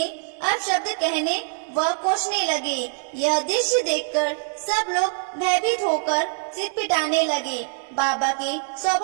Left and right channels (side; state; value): left; silent; digital silence